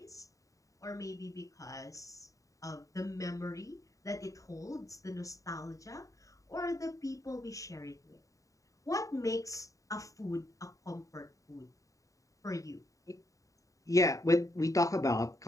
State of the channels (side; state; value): right; late; 0.16 ms